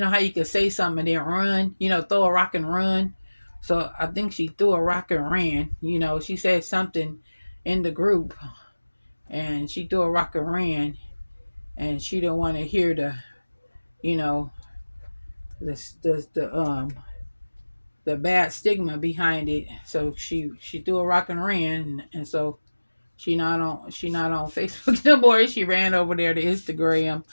can say something and then run, throw a rock and run. So I think she threw a rock and ran. She said something in the group, and she threw a rock and ran, and she didn't want to hear you know the bad stigma behind it. So she threw a rock and ran, and so she not on Facebook no more. She ran over there to Instagram.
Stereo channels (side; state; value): both; inverted; correlation -1.00